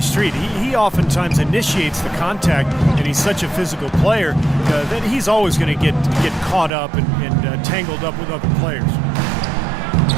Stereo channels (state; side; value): drops out; left; at 6.7 s